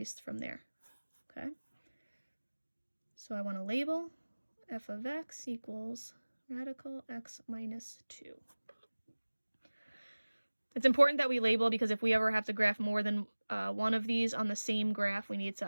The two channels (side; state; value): both; inverted; correlation -1.00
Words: from there. Okay. So I want to label f of x equals radical x minus 2. It's important that we label because if we ever have to graph more than one of these on the same graph, we need to